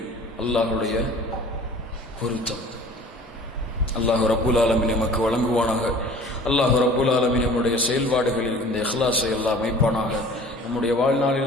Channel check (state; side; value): normal; both; correlation 0.45